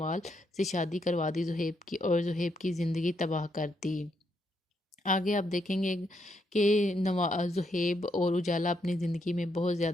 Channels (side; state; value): both; normal; correlation 0.77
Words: से शादी करवा दी ज़ुहैब की और ज़ुहैब की ज़िंदगी तबाह कर दी। आगे आप देखेंगे कि ज़ुहैब और उजाला अपनी ज़िंदगी में बहुत